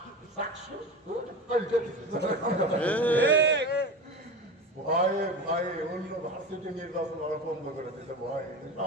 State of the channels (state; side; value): normal; both; correlation 0.28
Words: চাকসু ভয়ে অন্য ভার্সিটি নির্বাচন ওরা বন্ধ করে দিতে ভয়